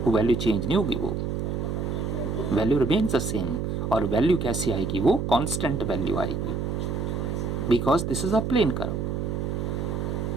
वो वैल्यू चेंज नहीं होगी, वो वैल्यू रिमेन्स द सेम। और वैल्यू कैसी आएगी? वो कांस्टेंट वैल्यू आएगी, because this is a plane curve.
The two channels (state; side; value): noise; right; hum, 2 dB below the sound